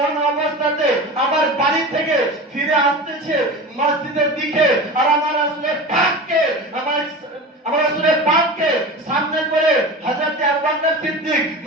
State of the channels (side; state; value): both; normal; correlation 0.31